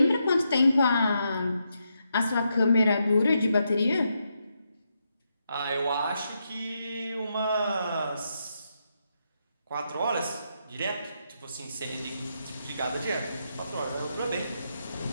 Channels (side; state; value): both; inverted; correlation -0.82